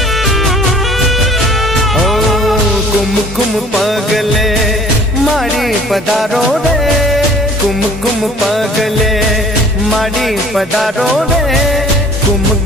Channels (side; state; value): both; normal; correlation 0.52